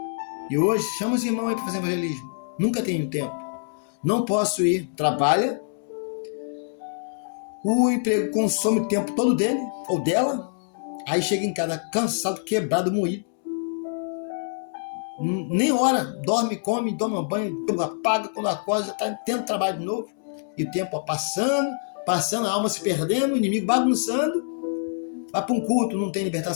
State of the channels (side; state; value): right; silent; digital silence